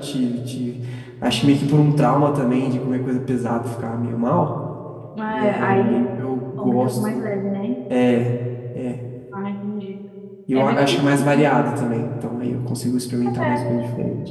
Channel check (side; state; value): both; identical; correlation 1.00